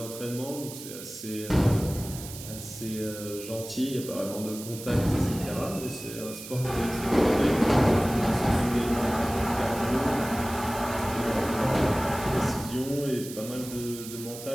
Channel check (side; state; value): right; noise; hiss, 12 dB below the sound